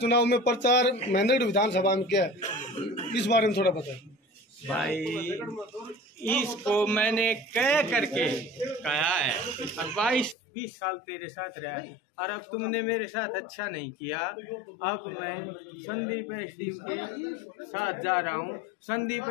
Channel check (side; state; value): right; drops out; at 10.4 s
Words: में प्रचार महेंद्रगढ़ विधानसभा में किया है, इस बारे में थोड़ा बताएं। भाई इसको मैंने कह करके कहा है, और 22-20 साल तेरे साथ रहा, और अब तुमने मेरे साथ अच्छा नहीं किया। अब मैं संदीप एसडीएम के साथ जा रहा हूँ। संदीप